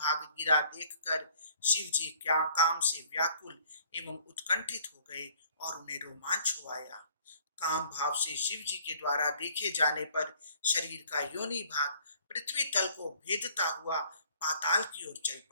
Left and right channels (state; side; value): inverted; both; correlation -0.58